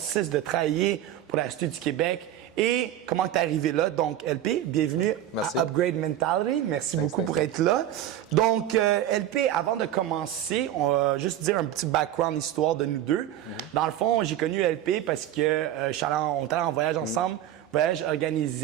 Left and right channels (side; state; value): left; quieter; 11.8 dB